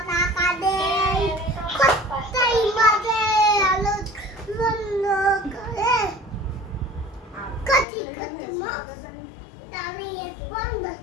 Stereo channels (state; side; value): drops out; right; at 7.9 s